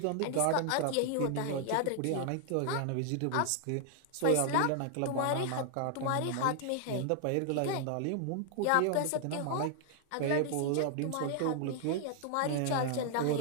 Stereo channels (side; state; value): both; different; correlation 0.00